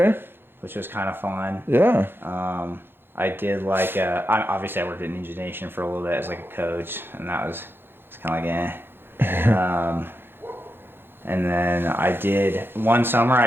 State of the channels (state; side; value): late; left; 0.10 ms